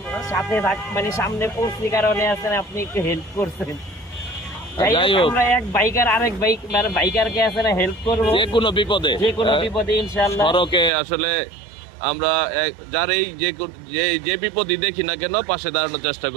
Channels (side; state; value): left; drops out; at 10.9 s